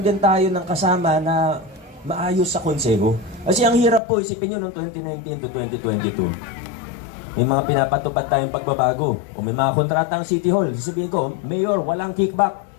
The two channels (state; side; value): drops out; right; at 4.0 s